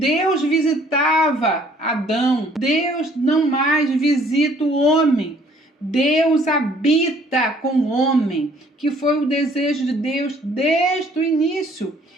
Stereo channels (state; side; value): normal; both; correlation 0.59